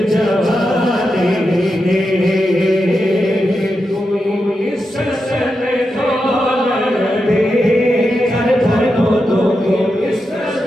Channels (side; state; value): both; normal; correlation 0.88